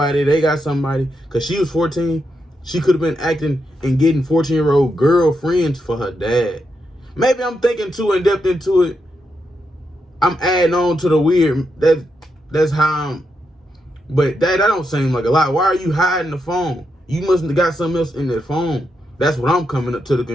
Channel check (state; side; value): normal; both; correlation 0.83